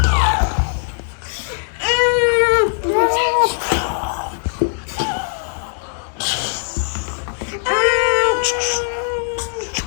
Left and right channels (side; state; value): right; silent; 64 dB below the other